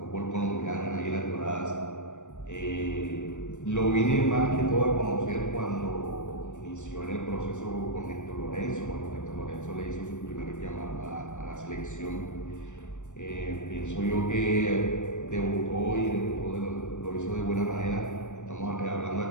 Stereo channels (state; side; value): late; right; 0.85 ms